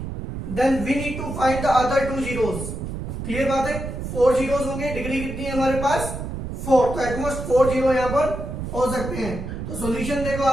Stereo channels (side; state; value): right; noise; rumble, 6 dB below the sound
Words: Then we need to find the other two zeros. Clear बात है, 4 जीरोस होंगे, डिग्री कितनी है हमारे पास 4, तो एटमोस्ट 4 जीरो यहां पर हो सकते हैं। तो सॉल्यूशन देखो